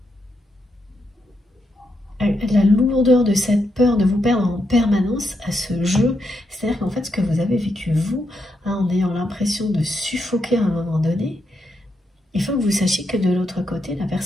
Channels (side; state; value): both; normal; correlation 0.81